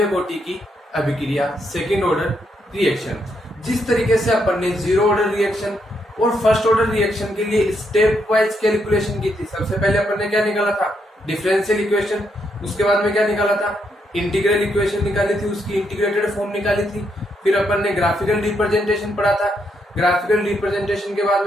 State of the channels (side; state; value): both; normal; correlation 0.78